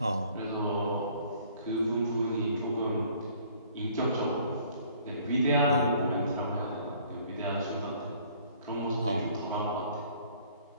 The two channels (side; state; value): both; inverted; correlation -0.57